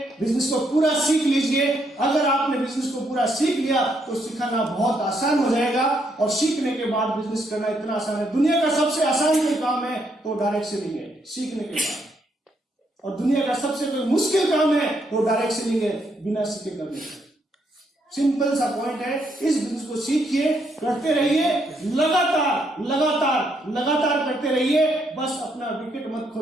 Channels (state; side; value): normal; both; correlation 0.75